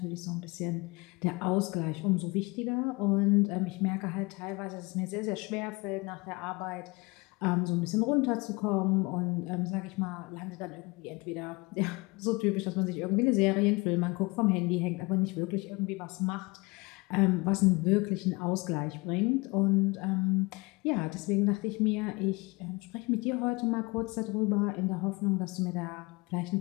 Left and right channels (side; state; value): right; quieter; 25.6 dB